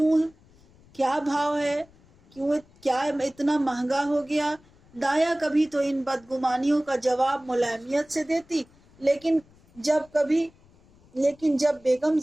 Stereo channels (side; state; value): left; noise; rumble, 29 dB below the sound